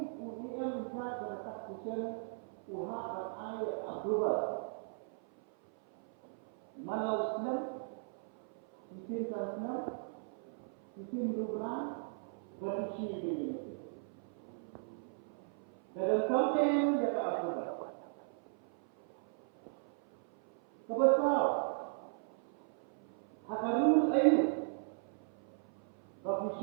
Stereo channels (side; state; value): left; silent; 53 dB below the other